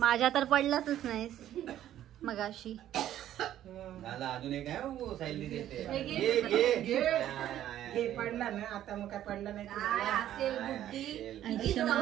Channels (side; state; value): left; quieter; 12.0 dB